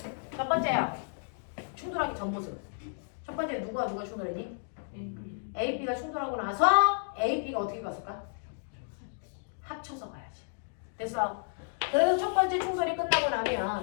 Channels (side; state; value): right; silent; digital silence